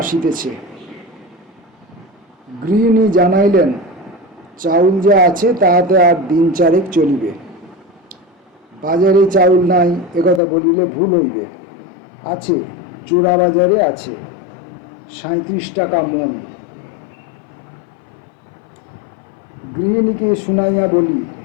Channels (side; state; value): right; drops out; at 10.4 s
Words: আসিতেছে। গৃহিণী জানাইলেন, চাউল যা আছে তাহাতে আর দিন চারেক চলিবে। বাজারে চাউল নাই একথা বলিলে ভুল হইবে। আছে, চোরা বাজারে আছে, 37 টাকা মণ। গৃহিণীকে শুনাইয়া বলি,